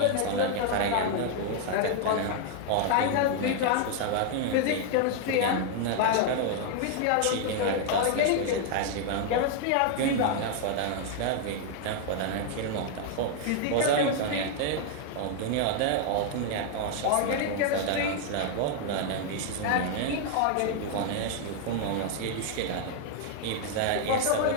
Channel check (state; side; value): different; both; correlation 0.00